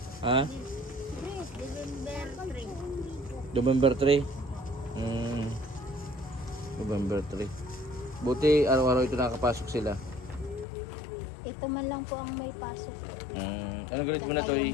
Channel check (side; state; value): right; drops out; at 10.7 s